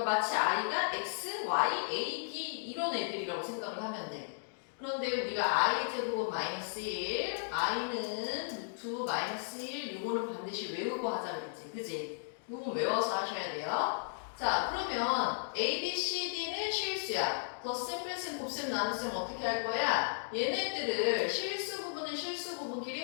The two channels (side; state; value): right; silent; digital silence